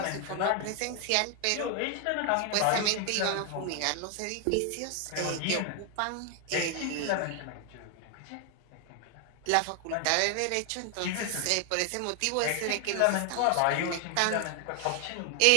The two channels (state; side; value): different; both; correlation 0.00